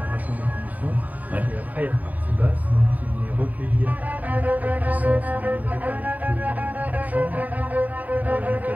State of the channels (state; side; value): late; left; 0.075 ms